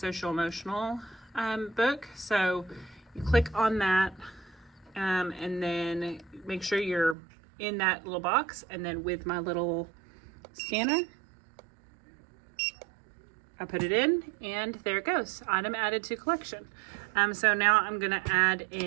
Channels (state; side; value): drops out; left; at 7.2 s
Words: emotional book, so you click on that and then make sure you're in that little box, and then with my little scanner I put it in and there it goes. Item added to collection. So now I'm gonna add